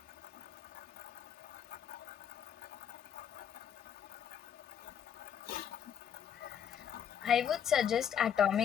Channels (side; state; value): right; quieter; 8.7 dB